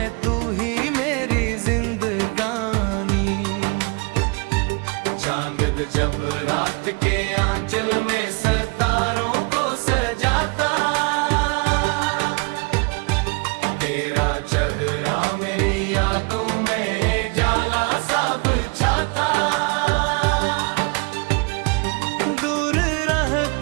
तू ही मेरी जिंदगानी। चांद जब रात के आंचल में सितारों को सजाता, तेरा चेहरा मेरी यादों में जाला सा बिछाता। दूर रह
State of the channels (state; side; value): quieter; left; 31.3 dB